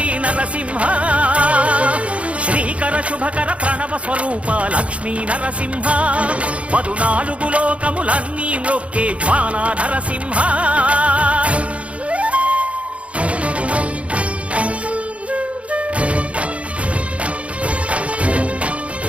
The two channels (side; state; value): left; late; 0.063 ms